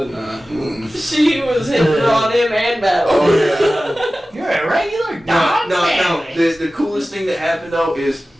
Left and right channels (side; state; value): both; normal; correlation 0.96